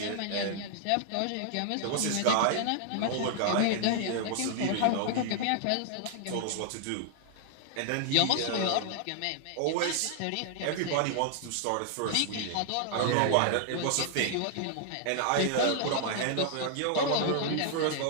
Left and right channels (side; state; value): both; different; correlation -0.01